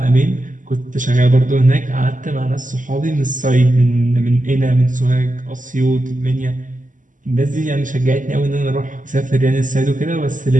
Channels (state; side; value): late; left; 0.38 ms